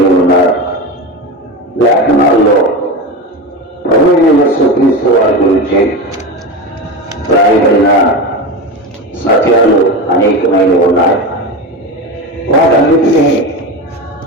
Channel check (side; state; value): both; normal; correlation 0.22